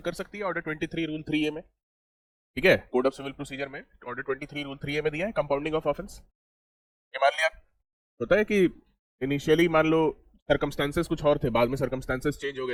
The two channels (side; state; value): both; identical; correlation 1.00